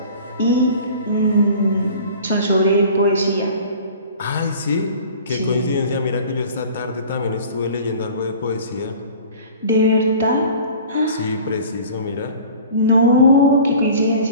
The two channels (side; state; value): both; inverted; correlation -0.43